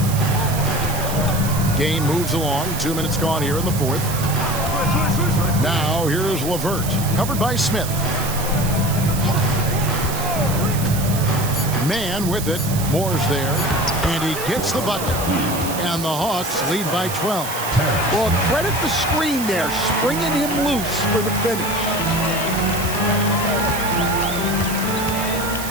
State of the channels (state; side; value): noise; right; hiss, 8 dB below the sound